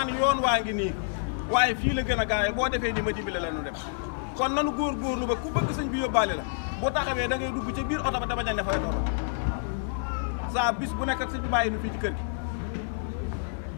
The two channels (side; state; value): right; silent; digital silence